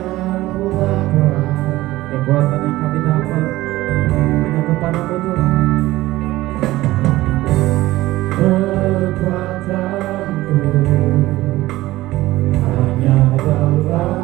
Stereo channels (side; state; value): left; quieter; 17.3 dB